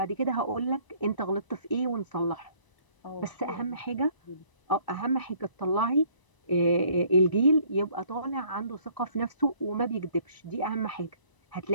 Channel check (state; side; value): late; right; 1.0 ms